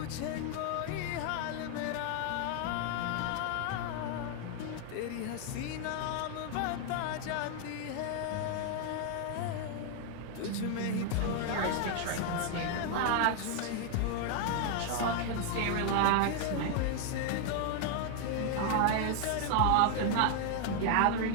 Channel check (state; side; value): different; both; correlation 0.00